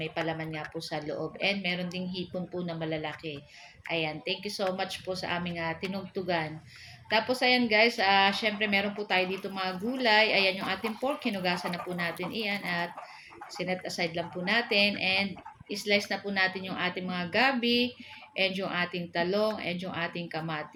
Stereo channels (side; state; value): both; identical; correlation 1.00